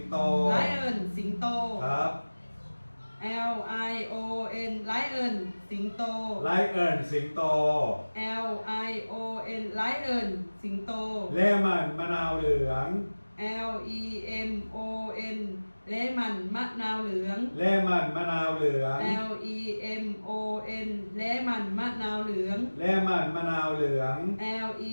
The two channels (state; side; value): inverted; both; correlation -1.00